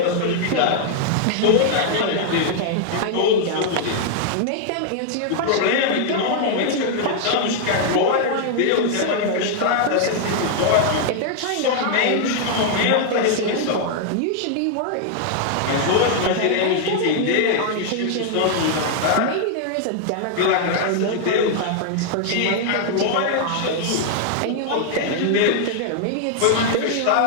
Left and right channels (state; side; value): different; both; correlation 0.00